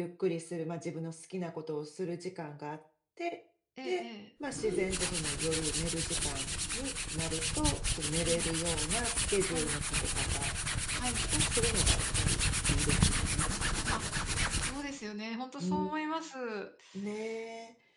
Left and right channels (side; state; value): both; identical; correlation 1.00